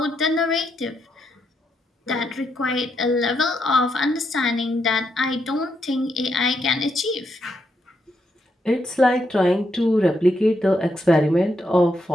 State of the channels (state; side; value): normal; both; correlation 0.80